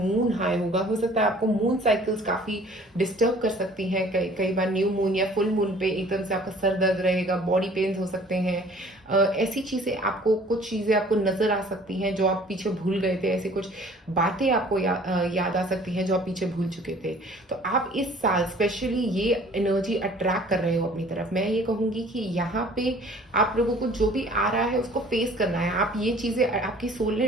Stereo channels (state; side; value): normal; both; correlation 0.52